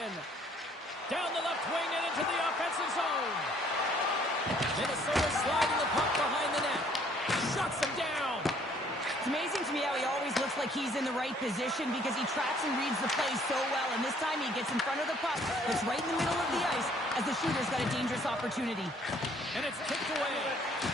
Down the left wing and into the offensive zone. Minnesota sliding the puck behind the net. Shuts him down. It's amazing to me how he always looks like he's in the right position because he tracks and reads the play so well. And this time he gets in front of the puck. It's right in the middle of the ice as the shooter's got a dangerous opportunity. And it's kicked away.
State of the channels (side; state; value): both; normal; correlation 0.61